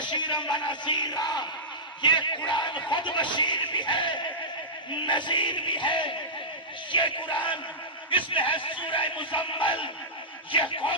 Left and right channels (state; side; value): normal; both; correlation -0.14